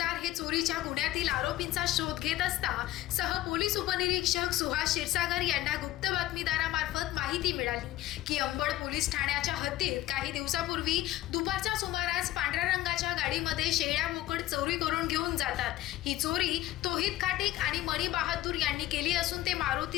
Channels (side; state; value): right; quieter; 15.4 dB